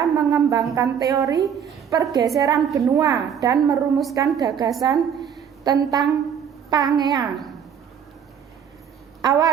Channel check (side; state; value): left; quieter; 8.1 dB